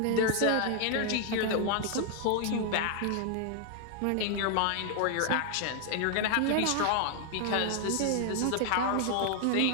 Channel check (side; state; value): both; different; correlation 0.00